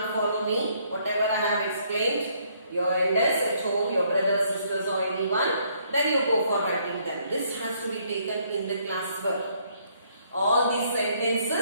follow me. Whatever I have explained, your elders at home, your brothers, sisters or anyone, then you go for writing them. This has to be taken in the classwork. All these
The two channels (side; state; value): both; inverted; correlation -0.68